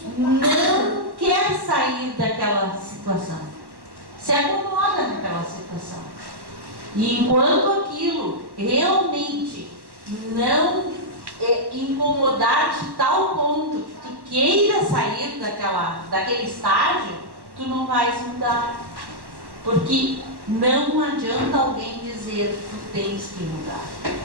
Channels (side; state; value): left; late; 1.1 ms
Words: não quer sair daquela situação. Se acomoda naquela situação. E enquanto aquilo realmente não incomodar de tal ponto que tu queira sair daquele estágio, tu não vais mudar. Porque não adianta alguém dizer tu tens que mudar.